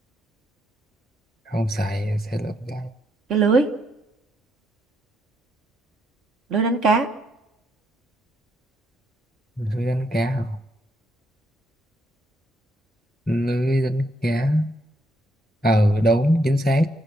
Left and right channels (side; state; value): both; normal; correlation 0.76